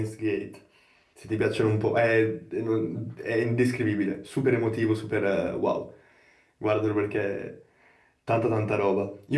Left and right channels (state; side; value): identical; both; correlation 1.00